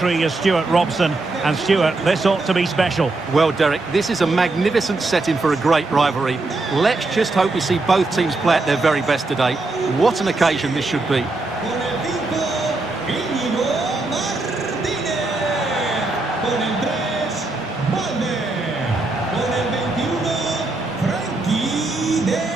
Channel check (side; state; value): left; quieter; 3.2 dB